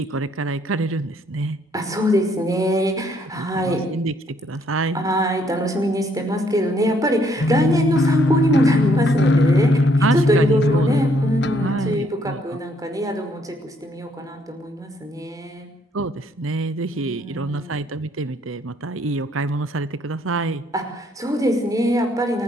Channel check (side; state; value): both; normal; correlation 0.68